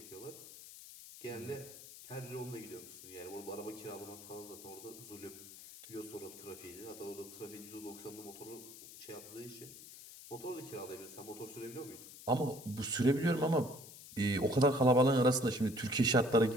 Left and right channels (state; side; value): noise; left; hiss, 16 dB below the sound